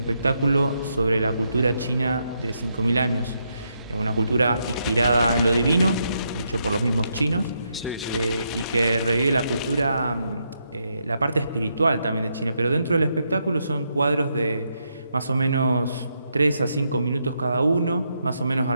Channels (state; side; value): inverted; both; correlation -0.80